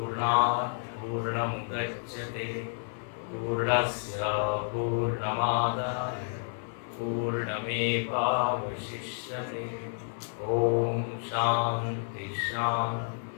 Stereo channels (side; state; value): right; silent; 58 dB below the other